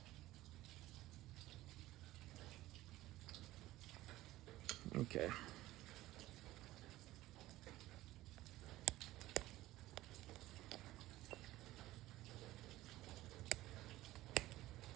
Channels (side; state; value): left; quieter; 16.5 dB